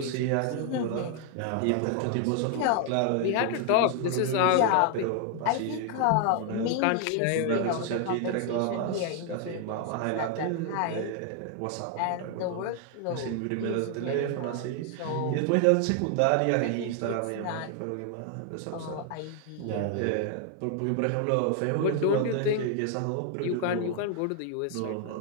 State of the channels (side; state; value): both; different; correlation 0.00